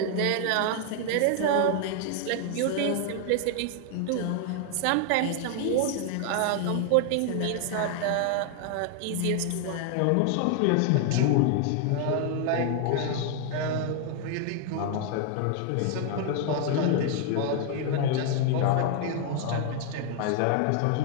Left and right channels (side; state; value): both; different; correlation 0.00